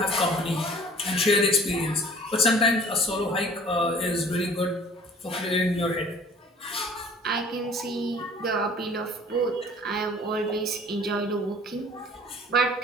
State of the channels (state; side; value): normal; both; correlation 0.49